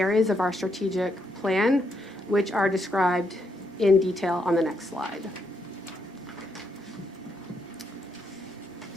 of our strategic plan, which are described in detail on the next slide.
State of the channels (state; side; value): normal; both; correlation 0.78